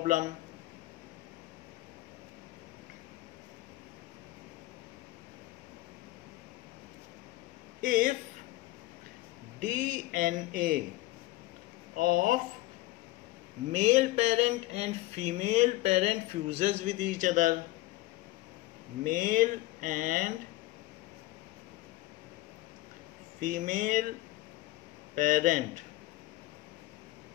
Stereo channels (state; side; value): quieter; right; 18.5 dB